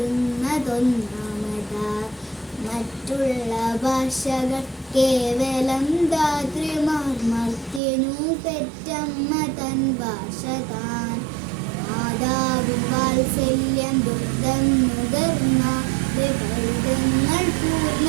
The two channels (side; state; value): left; drops out; at 7.8 s